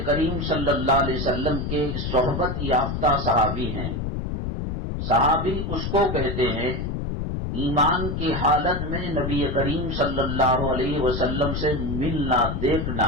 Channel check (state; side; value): noise; left; rumble, 3 dB below the sound